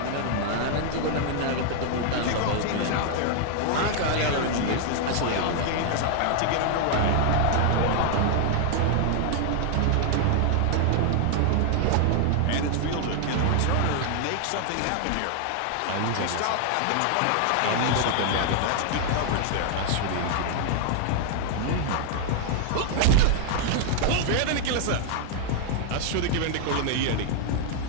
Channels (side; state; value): both; different; correlation 0.00